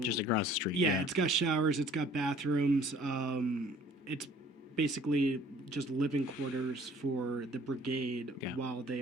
across the street. Yeah, it's got showers, it's got bathrooms. It's basically just living quarters for the brigade while they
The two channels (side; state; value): both; normal; correlation 0.54